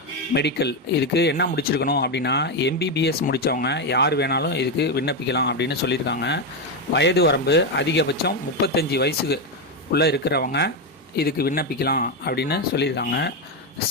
medical. இதுக்கு என்ன முடிச்சிருக்கணும் அப்படின்னா, எம்பிபிஎஸ் முடித்தவங்க யார் வேணாலும் இதுக்கு விண்ணப்பிக்கலாம் அப்படின்னு சொல்லியிருக்காங்க. வயது வரம்பு அதிகபட்சம் 35 வயசுக்கு உள்ளே இருக்கிறவங்க இதுக்கு விண்ணப்பிக்கலாம் அப்படின்னு சொல்லியிருக்காங்க.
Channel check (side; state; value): both; normal; correlation 0.08